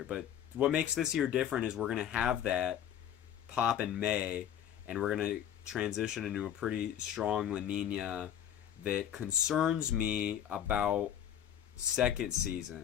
But what makes this year different is we're going to have that pop in May, and we're going to transition into a pretty strong La Nina that concerns me about second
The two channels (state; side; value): quieter; right; 10.1 dB